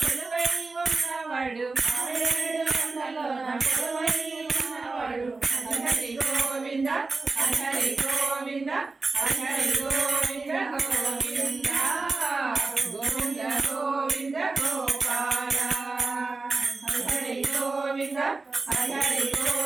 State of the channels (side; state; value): left; quieter; 3.8 dB